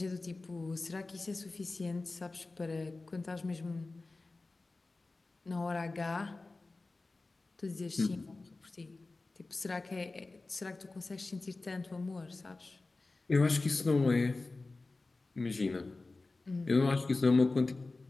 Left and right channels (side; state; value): right; quieter; 3.4 dB